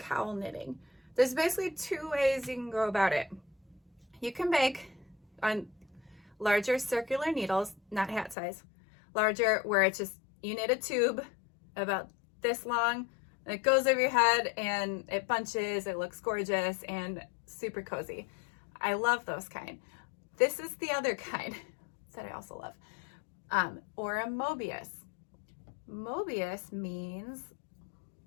knitting, there's basically two ways you can go about it. You can make on larger circular needles, not hat size, larger, where it's just, you knit a tube about this long, and it goes over your head and it bunches, it looks gorgeous and super cozy. I love those kind. This is the other kind that I also love, or a Mobius. Mobius means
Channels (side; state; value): right; drops out; at 8.3 s